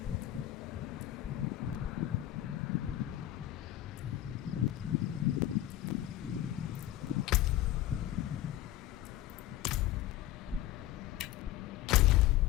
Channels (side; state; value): right; quieter; 13.9 dB